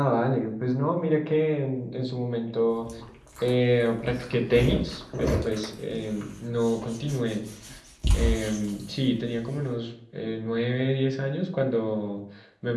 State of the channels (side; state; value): both; identical; correlation 1.00